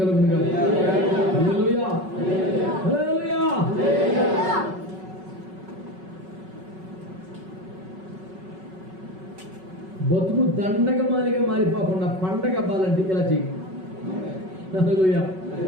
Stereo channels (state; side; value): late; left; 5.4 ms